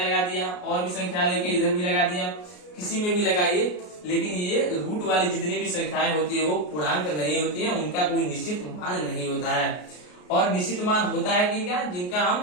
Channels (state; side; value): late; right; 33 ms